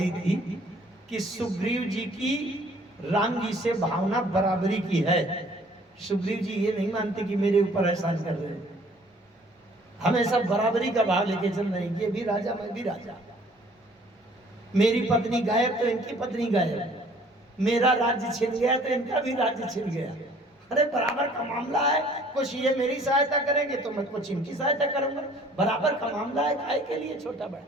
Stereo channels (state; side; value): normal; both; correlation 0.56